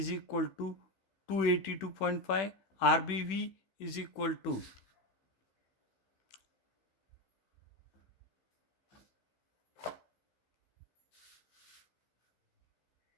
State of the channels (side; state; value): right; late; 16 ms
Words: equal to 282.5, RBV is equal to